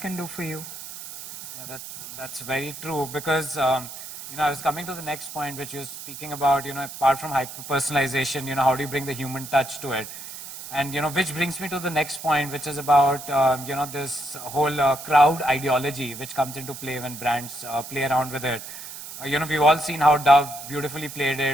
do for you. Yeah, that's very true because, I was coming to the next point, which you're speaking about, apart from hyper-personalization, how do you bring the human touch to it? And, which brings me to the next point, which is about, this whole crowd ideology, which comes into play when brands play around with it. We've all seen how Dove beautifully played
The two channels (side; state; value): right; noise; hiss, 11 dB below the sound